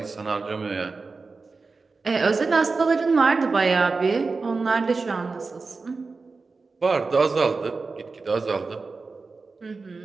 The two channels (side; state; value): left; quieter; 4.1 dB